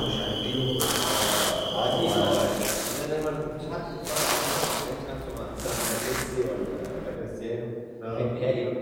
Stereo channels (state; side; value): identical; both; correlation 1.00